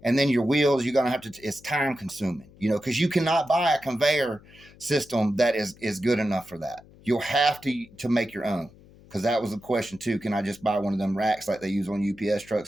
And then your wheels, you're going to have to, it's time consuming, you know, because you cannot buy a conveyor system that is good enough for that. You'll have to make your own, because that was the question too. Can I just buy one of them racks like they use on UPS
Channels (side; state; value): left; noise; hum, 24 dB below the sound